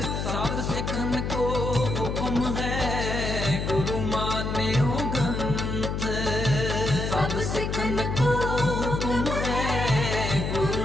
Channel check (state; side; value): noise; left; hum, 2 dB below the sound